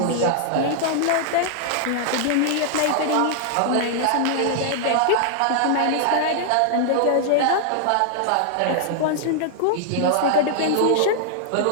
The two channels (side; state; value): both; different; correlation -0.01